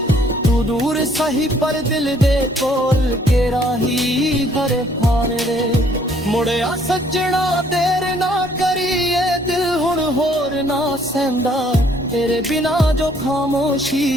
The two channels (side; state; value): both; normal; correlation 0.63